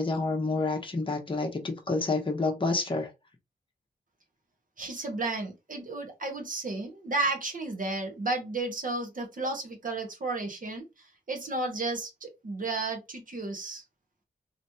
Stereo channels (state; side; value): normal; both; correlation 0.41